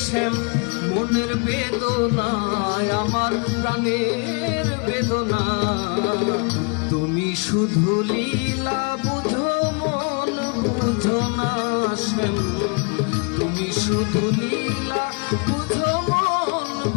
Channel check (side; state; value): right; quieter; 34.0 dB